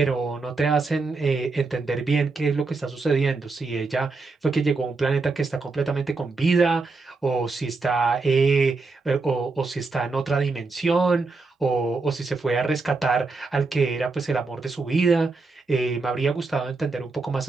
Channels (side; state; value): left; quieter; 3.9 dB